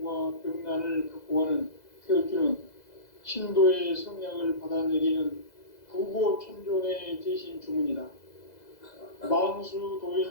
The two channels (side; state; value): right; late; 2.0 ms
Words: 병난을 극복하는 태울주는 신도의 성약을 받아내리는 부고천존의 대신 주문이다. 만수